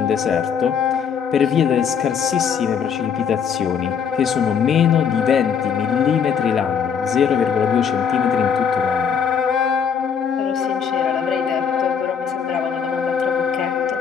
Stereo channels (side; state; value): right; quieter; 7.1 dB